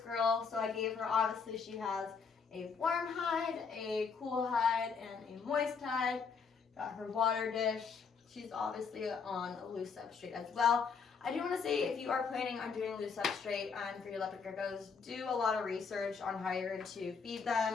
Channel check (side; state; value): right; quieter; 5.6 dB